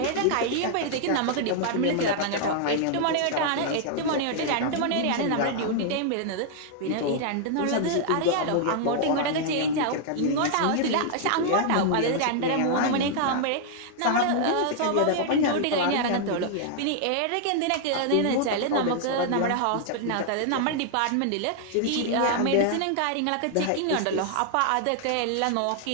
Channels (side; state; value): both; different; correlation -0.01